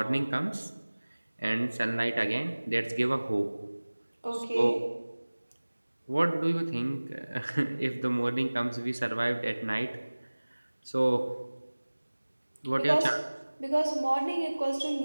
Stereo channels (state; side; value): inverted; both; correlation -1.00